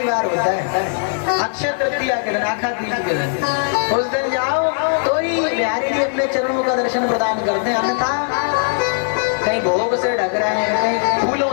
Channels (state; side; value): silent; right; digital silence